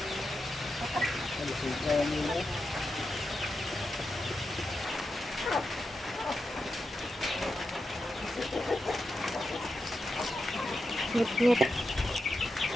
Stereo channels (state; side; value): normal; both; correlation 0.88